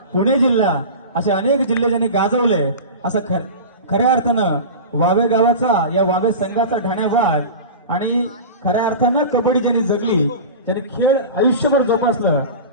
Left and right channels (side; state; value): both; inverted; correlation -0.30